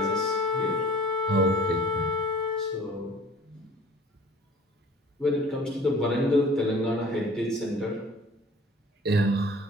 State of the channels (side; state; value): both; normal; correlation 0.48